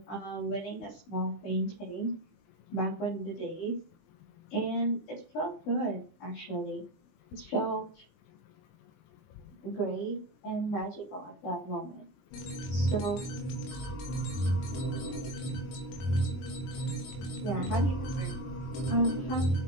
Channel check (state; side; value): late; right; 20 ms